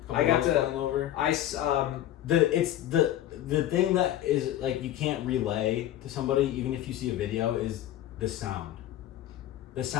I got to- flying over. The thing that is like you can't relay to somebody even if you see a video is the sound. The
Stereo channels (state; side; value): quieter; right; 12.8 dB